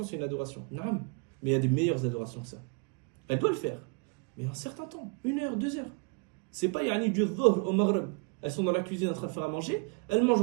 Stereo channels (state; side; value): quieter; left; 33.4 dB